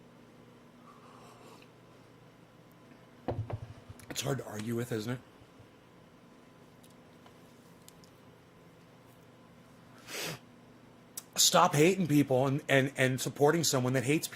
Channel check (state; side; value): identical; both; correlation 1.00